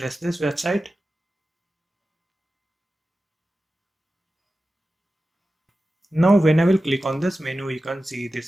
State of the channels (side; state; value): both; normal; correlation 0.94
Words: this website. Now when I will click on this menu, you can see